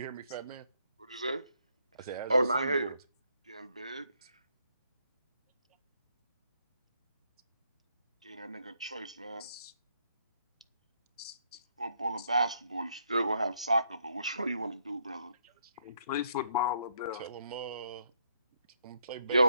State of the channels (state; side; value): inverted; both; correlation -0.73